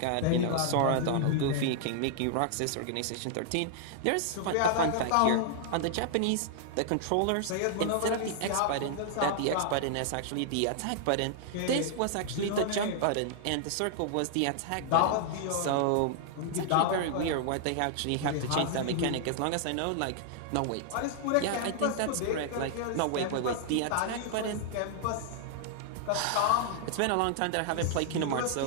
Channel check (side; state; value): both; different; correlation -0.01